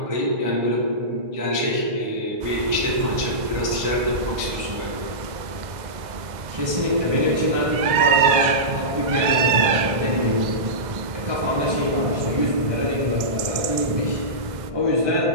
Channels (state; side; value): late; left; 1.6 ms